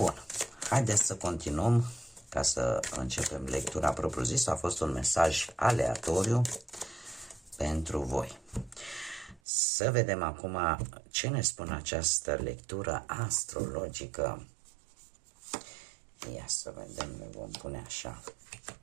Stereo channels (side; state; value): left; drops out; at 9.4 s